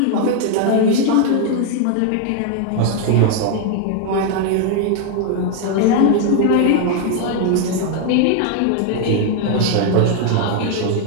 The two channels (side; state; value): both; different; correlation 0.00